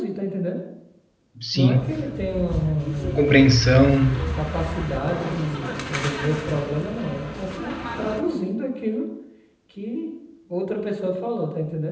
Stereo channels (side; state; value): both; identical; correlation 1.00